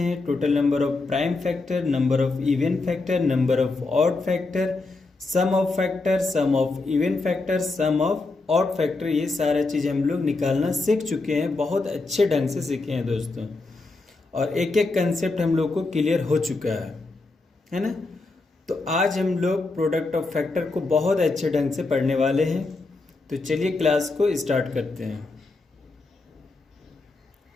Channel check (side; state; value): right; quieter; 3.5 dB